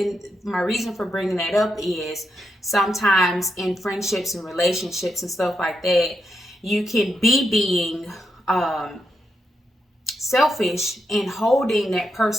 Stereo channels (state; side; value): normal; both; correlation 0.84